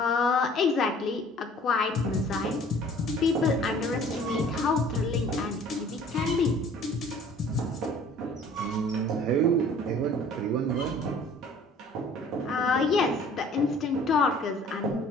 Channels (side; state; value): both; normal; correlation 0.51